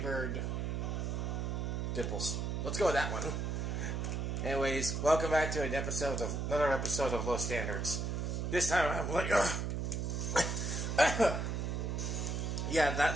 dimples. Let's go with that one. Anyways, welcome back to another episode of Low Standards. This time I'm like, yeah,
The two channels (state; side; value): noise; right; hum, 1 dB below the sound